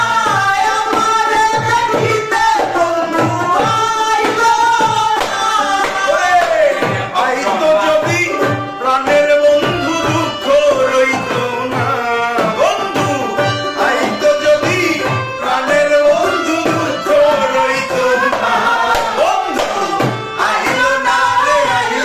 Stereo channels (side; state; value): both; identical; correlation 1.00